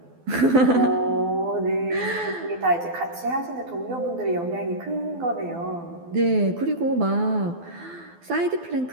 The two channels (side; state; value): left; late; 12 ms